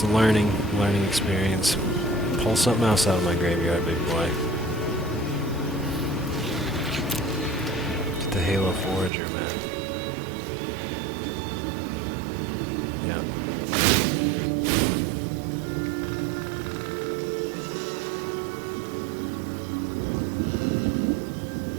a learning experience. Pull something else out of my graveyard, big boy. The Halo Forager, man. Yeah.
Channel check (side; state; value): left; drops out; at 9.1 s